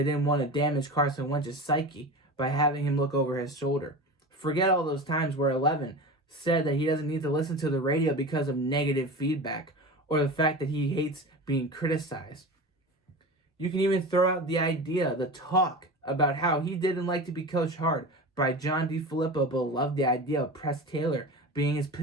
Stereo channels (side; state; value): both; normal; correlation 0.30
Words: didn't want to damage Carson Wentz's psyche by having him look over his shoulder. Forget all those times where 11 said that he doesn't need to listen to the radio because of negative feedback or the fact that he hates being criticized. You can even throw out the idea, the talk about how he didn't like to be coached hard by John DeFilippo, but loved the idea of Press Taylor being his